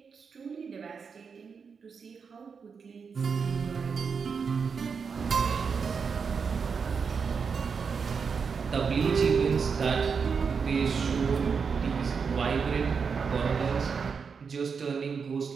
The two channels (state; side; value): quieter; left; 5.8 dB